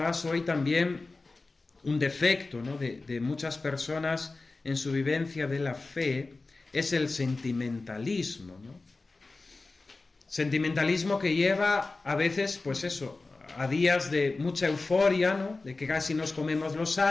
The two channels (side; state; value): right; quieter; 3.5 dB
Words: hoy también un defecto, ¿no? de muchas personas en su vivencia de la fe es el sentimentalismo, ¿no? Sentimentalismo que lleva a veces, pues eso, a días de mucha euforia, ¿no? De que casi nos comemos los